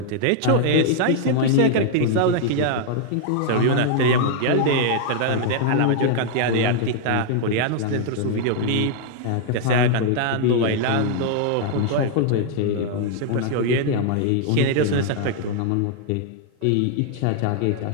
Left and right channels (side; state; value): both; different; correlation 0.00